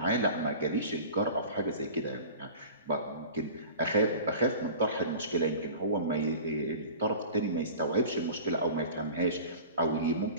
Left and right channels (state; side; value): inverted; both; correlation -0.39